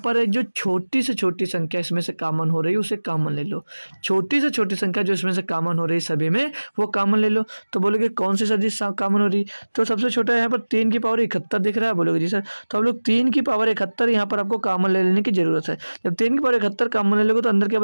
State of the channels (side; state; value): both; inverted; correlation -1.00